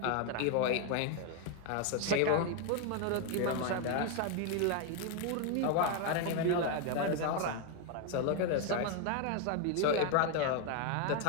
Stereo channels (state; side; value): different; both; correlation 0.01